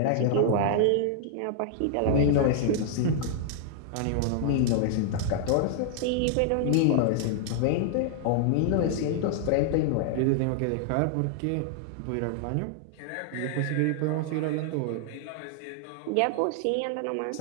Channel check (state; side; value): different; both; correlation -0.01